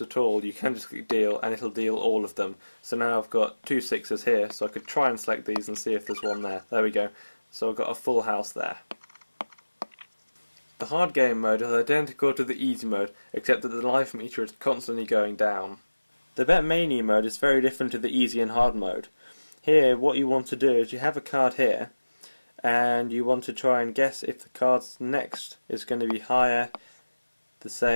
all, you can just click deal and it'll deal all of them. So now I've got 2 6s here, so I could try and select these and see if there's one there. There we go. So I've got a full house there. The hard game mode is identical to the easy mode, except that the life meter is constantly going down. The bet mania mode is very different to the easy and hard mode. Here what you want to do is you have a card here and you want to try and guess if the card's next is going to be higher, the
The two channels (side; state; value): both; inverted; correlation -1.00